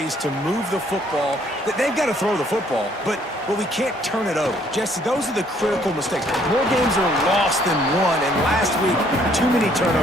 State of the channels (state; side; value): normal; both; correlation 0.64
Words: to move the football. They've got to throw the football, but we can't turn it over. Jesse, those are the critical mistakes. More games are lost than won, and last week, too many